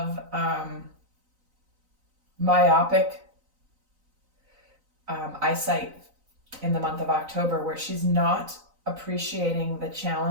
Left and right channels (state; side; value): late; left; 3.9 ms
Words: myopic eyesight in the month of October, where she's not appreciating the